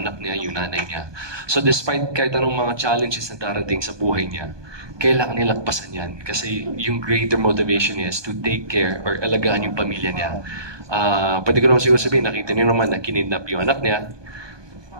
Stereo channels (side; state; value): left; late; 1.2 ms